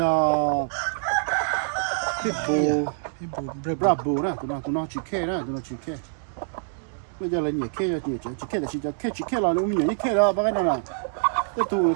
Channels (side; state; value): left; silent; digital silence